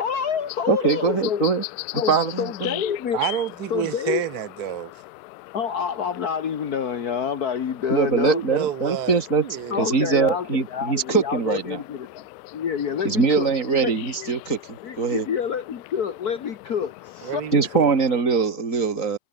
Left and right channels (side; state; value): right; late; 3.9 ms